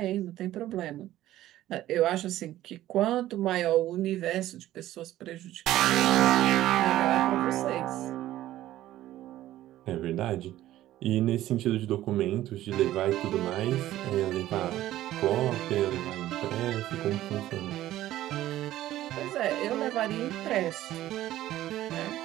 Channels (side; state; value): left; quieter; 14.2 dB